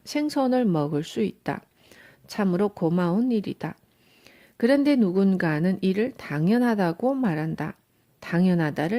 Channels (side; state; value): both; identical; correlation 1.00